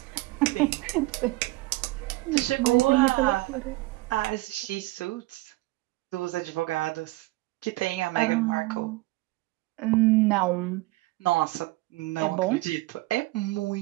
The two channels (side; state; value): left; quieter; 20.8 dB